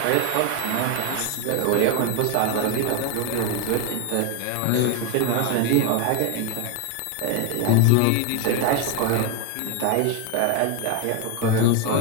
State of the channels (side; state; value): both; different; correlation 0.01